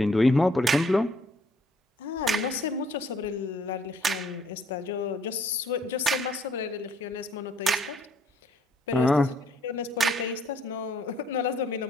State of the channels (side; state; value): both; normal; correlation 0.64